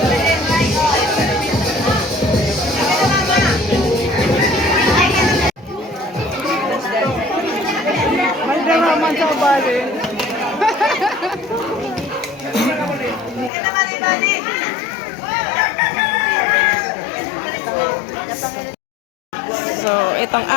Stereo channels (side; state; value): right; drops out; at 13.5 s